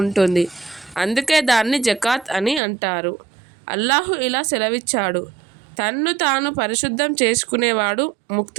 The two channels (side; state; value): left; drops out; at 2.6 s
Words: ఉంటుంది. అందుకే దాన్ని జకాత్ అని అంటారు. అల్లాహు ఇలా సెలవిచ్చాడు: తన్ను తాను పరిశుద్ధం చేసుకునేవాడు